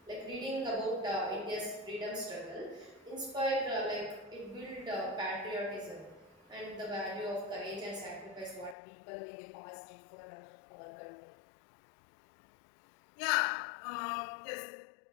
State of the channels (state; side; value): drops out; right; at 8.8 s